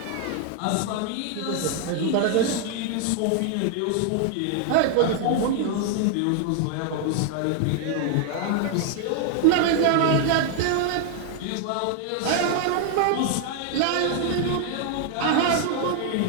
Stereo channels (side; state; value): both; different; correlation 0.00